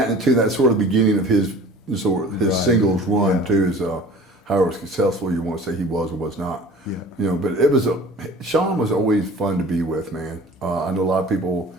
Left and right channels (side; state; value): both; normal; correlation 0.44